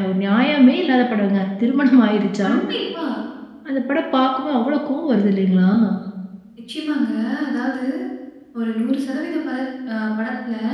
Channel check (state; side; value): identical; both; correlation 1.00